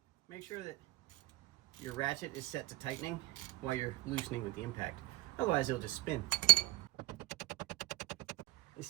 Make sure that your ratchet is set to tightening while you're loosening with the impact. Otherwise, it'll just spin.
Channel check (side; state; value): left; quieter; 19.0 dB